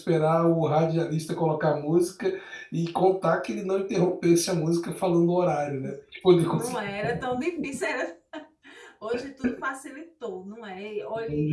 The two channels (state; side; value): identical; both; correlation 1.00